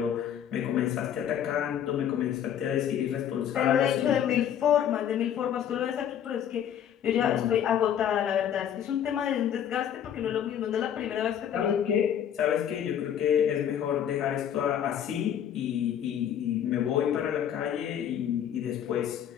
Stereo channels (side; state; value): right; quieter; 9.6 dB